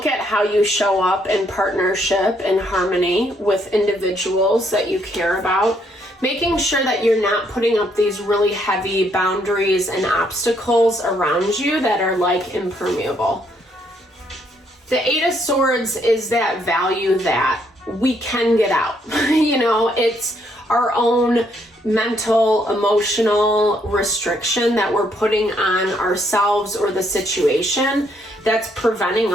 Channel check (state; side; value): normal; both; correlation 0.71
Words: how you show up in partnership and harmony with individuals that you care about, making sure that you're not putting up these really heavy boundaries and obstacles around you that are like impermeable. The Eight of Swords is that value that we can get out. You know, it's our own mental, emotional restriction that we're putting on ourselves or the situation that's preventing